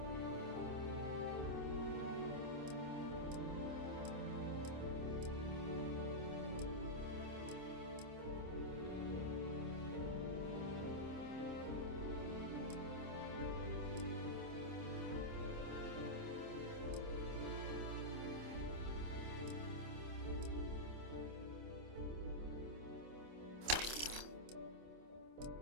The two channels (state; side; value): late; left; 26 ms